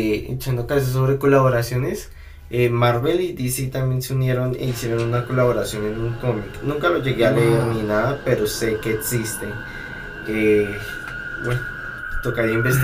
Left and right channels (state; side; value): identical; both; correlation 1.00